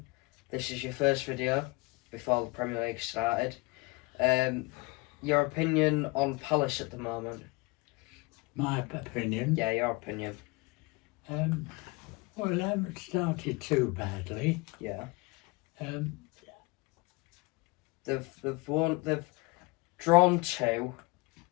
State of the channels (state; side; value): quieter; right; 24.9 dB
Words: This is your first video before the Premier League started. Your opinion on Palace at the moment? My opinion. Yeah, your opinion. Well, they haven't started too badly. Yeah. Um, They've drawn 2